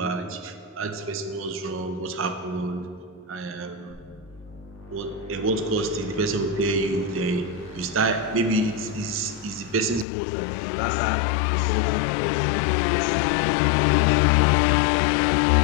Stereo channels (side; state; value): right; drops out; at 10.1 s